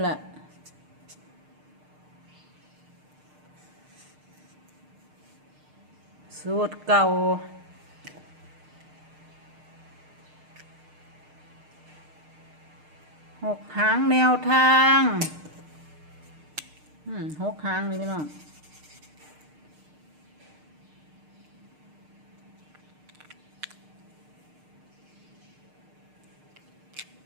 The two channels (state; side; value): late; left; 6.6 ms